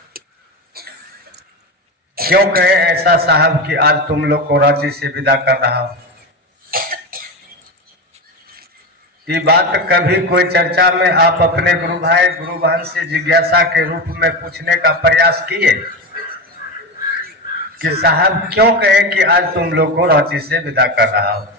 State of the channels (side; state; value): both; normal; correlation 0.19